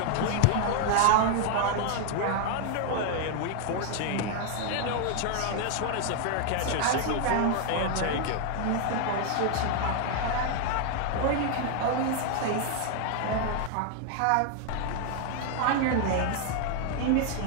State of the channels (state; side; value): different; both; correlation 0.00